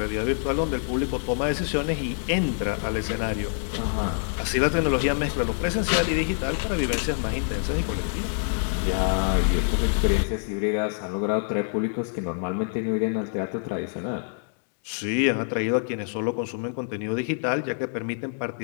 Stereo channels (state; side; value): silent; right; digital silence